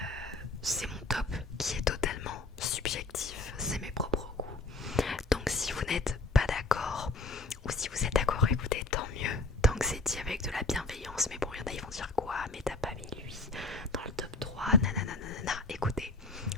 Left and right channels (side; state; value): right; quieter; 3.3 dB